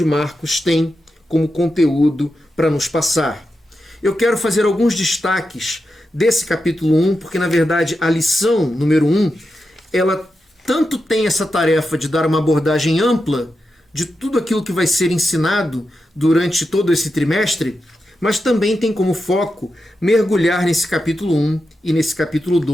Marcos tem como conteúdo para nos passar. Eu quero fazer alguns destaques desse capítulo 1, porque na verdade a lição número 1, ela tanto tem essa tarefa de dar uma abordagem ampla de tudo aquilo que vai ser ensinado durante todo esse trimestre, mas também tem como foco mergulhar nesse capítulo 1 e nesse capítulo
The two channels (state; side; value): normal; both; correlation 0.89